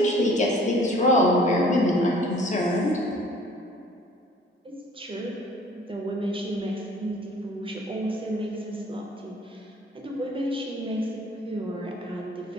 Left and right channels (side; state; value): both; normal; correlation 0.53